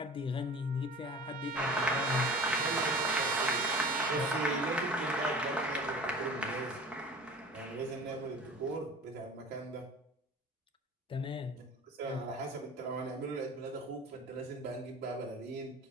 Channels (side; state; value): both; normal; correlation 0.40